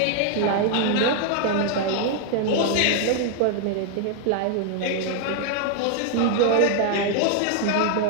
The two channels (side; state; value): both; different; correlation 0.00